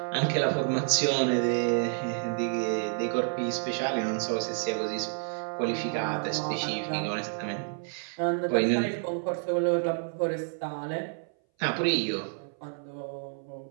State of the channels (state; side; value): silent; left; 58 dB below the other